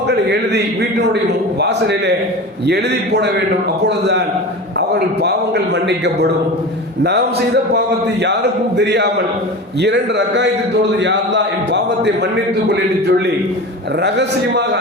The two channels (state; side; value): normal; both; correlation 0.31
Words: எழுதி வீட்டினுடைய வாசலிலே எழுதி போட வேண்டும். அப்பொழுதுதான் அவர்கள் பாவங்கள் மன்னிக்கப்படும். நாம் செய்த பாவத்தை யாருக்கும் தெரியாமல் 2 ரக்காயத்தை தொழுது, யா அல்லாஹ் என் பாவத்தை மன்னித்துக் கொள் என்று சொல்லி ரகசியமாக